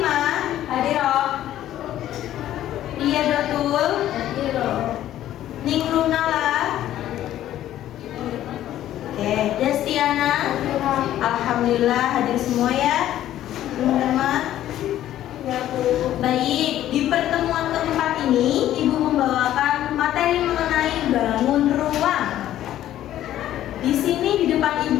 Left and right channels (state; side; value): quieter; right; 12.6 dB